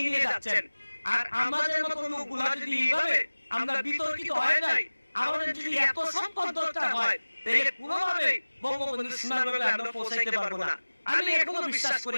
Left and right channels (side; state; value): both; inverted; correlation -1.00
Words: নিয়ে যাচ্ছেন। আর আমাদের মতো লোকগুলা যদি এইভাবে আমরা বিতর্কিত হয়ে যাই, আমাদের যদি এত সম্পদ দরকার হয়, তাহলে কোনোভাবে বঙ্গবন্ধু সীমানাগুলো আমরা পৌঁছাইতে পারবো না। আমি এখনো বিশ্বাস